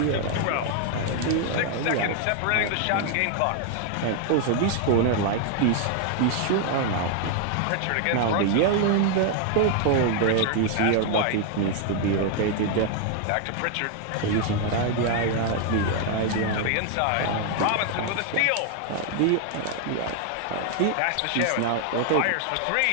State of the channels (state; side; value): different; both; correlation 0.00